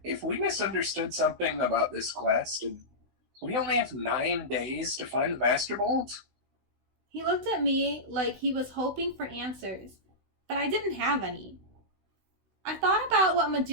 if we misunderstood something about this quest, and we only have 9 days to find the Master Bolt. He looked at me like he was hoping for answers, but I didn't have any. I thought about what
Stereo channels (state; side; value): late; left; 16 ms